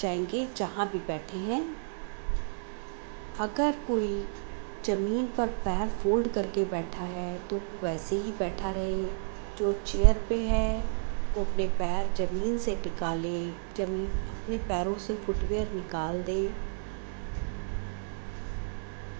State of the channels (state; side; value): silent; left; digital silence